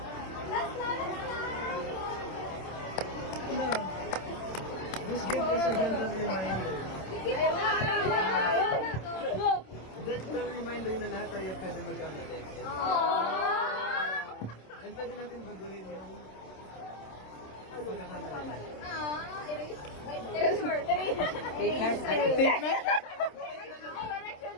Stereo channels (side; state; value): right; late; 27 ms